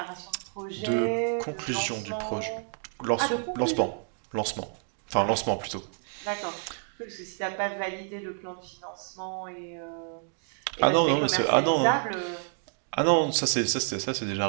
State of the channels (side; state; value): left; silent; 55 dB below the other